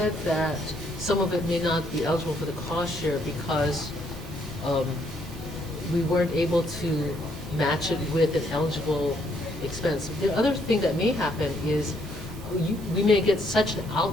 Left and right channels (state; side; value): normal; both; correlation 0.70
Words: that some of it may not be eligible for the cost share because we weren't able to match it with an eligible expense, the other thing that may happen is we may get such an